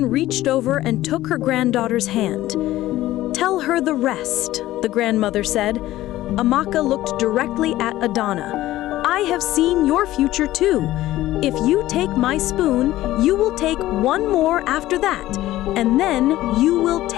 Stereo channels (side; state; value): right; quieter; 15.5 dB